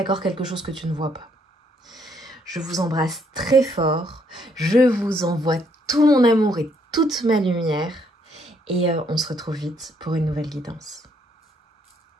quelque chose que tu ne vois pas. Je vous embrasse très fort. Je vous envoie tout mon amour et toute ma lumière. Et on se retrouve vite pour une nouvelle guidance.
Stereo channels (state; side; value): normal; both; correlation 0.70